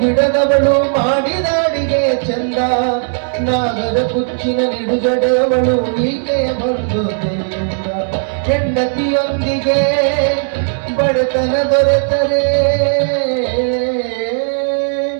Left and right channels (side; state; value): left; silent; digital silence